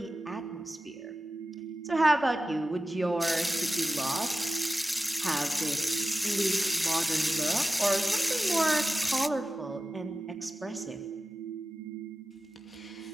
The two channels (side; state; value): both; normal; correlation 0.94